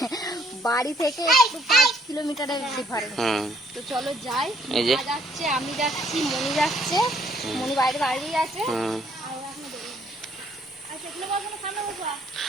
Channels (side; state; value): both; normal; correlation 0.66